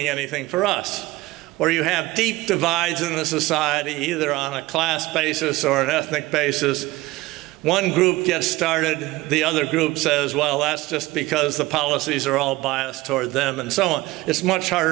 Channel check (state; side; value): quieter; left; 19.3 dB